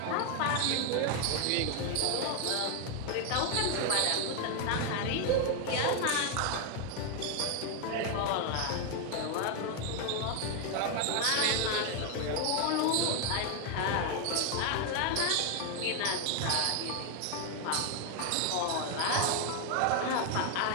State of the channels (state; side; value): different; both; correlation 0.01